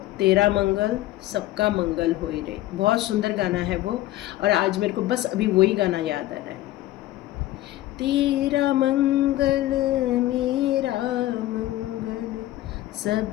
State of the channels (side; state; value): right; quieter; 15.6 dB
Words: तेरा मंगल, सबका मंगल होई रहे। बहुत सुंदर गाना है वो और आज मेरे को बस अभी वही गाना याद आ रहा है। तेरा मंगल मेरा मंगल,